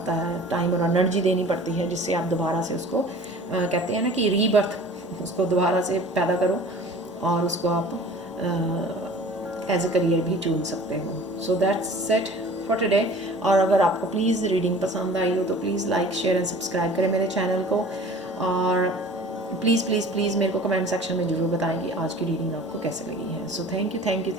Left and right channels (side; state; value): both; normal; correlation 0.45